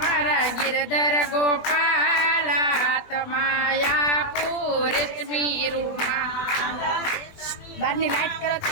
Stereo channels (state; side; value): late; right; 21 ms